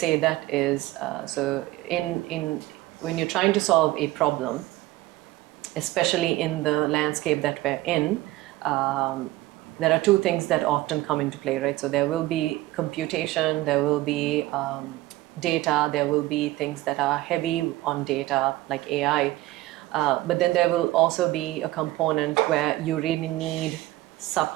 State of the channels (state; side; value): quieter; left; 17.7 dB